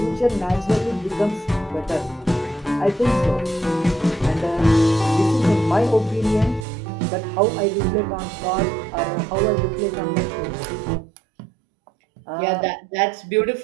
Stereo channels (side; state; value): left; drops out; at 6.7 s